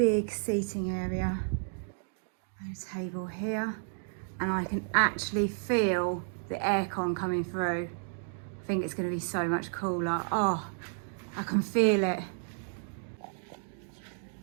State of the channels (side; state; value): left; silent; digital silence